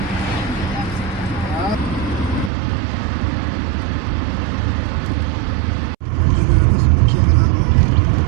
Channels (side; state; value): left; drops out; at 2.5 s